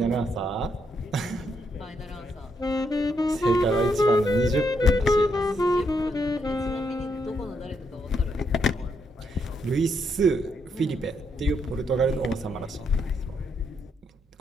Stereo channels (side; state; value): both; normal; correlation 0.77